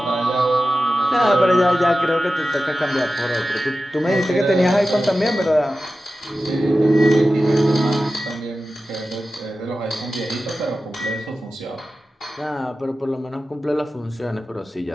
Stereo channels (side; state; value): both; normal; correlation 0.94